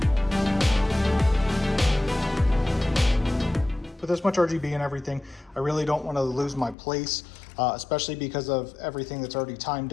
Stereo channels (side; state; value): right; drops out; at 6.8 s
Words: with this much RGB and everything, I really don't want to lose my place, especially because of everything that's already timed